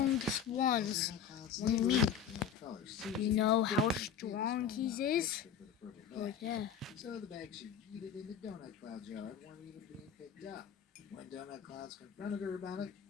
ones. Donut Cloud's Mm. neighbor, named Color Susie, You know how didn't have strong the he small is? extra for the purple Right bag. there. So the bags she yeeted into Donut Cloud's yard weren't even being picked up. When Donut Clouds confronted her about it,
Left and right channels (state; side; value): quieter; right; 7.6 dB